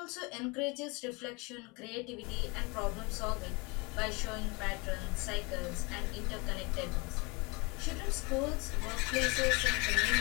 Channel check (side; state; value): right; quieter; 28.1 dB